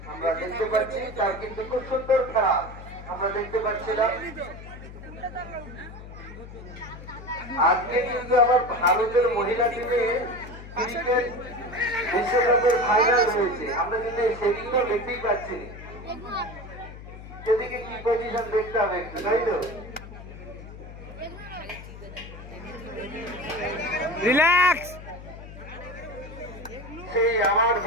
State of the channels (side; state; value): left; noise; hum, 14 dB below the sound